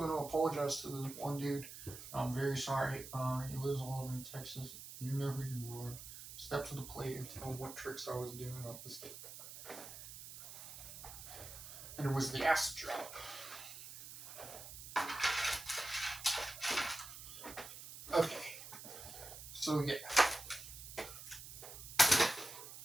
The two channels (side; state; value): right; noise; hiss, 12 dB below the sound